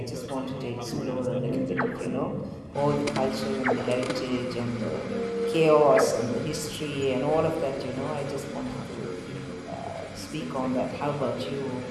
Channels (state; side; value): identical; both; correlation 1.00